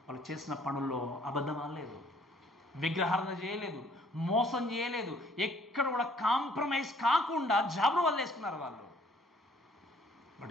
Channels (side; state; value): both; normal; correlation 0.60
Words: వాళ్ళు చేసిన పనుల్లో అబద్ధం ఆడలేదు, విగ్రహారాధన చేయలేదు, మోసం చేయలేదు, ఎక్కడ కూడా కాంప్రమైజ్ కాకుండా జాబులు వాళ్ళు వేసుకున్నారు వాళ్ళు.